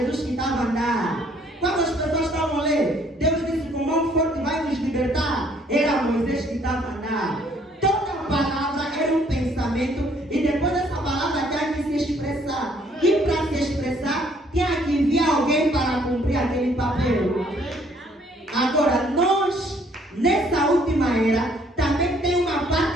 que estava a andar. Quando as pessoas estavam lendo, Deus disse, com mão forte vai nos libertar. Era Moisés que estava a andar. Toda palavra era um pensamento e depois dessa palavra tinha que se expressar. E para se expressar, tinha que enviar alguém para cumprir aquele papel. Agora, nós, nessa última era, também tem uma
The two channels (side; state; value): both; normal; correlation 0.63